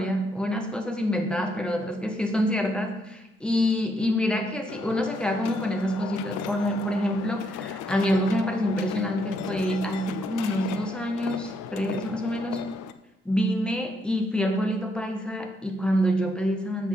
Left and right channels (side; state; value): both; normal; correlation 0.75